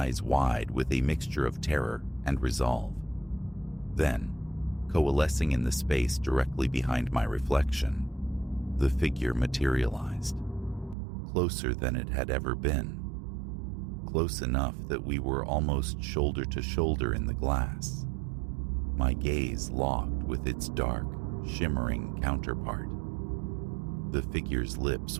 wide with a mixture of terror and resolve. Then, coalescing in the space directly behind my reflection, the figure materialized. Closer than it had ever been. Close enough that we were almost shoulder to shoulder in the glass. My gaze locked with its dark, shimmering counterpart. The figure's lips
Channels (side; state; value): left; drops out; at 11.0 s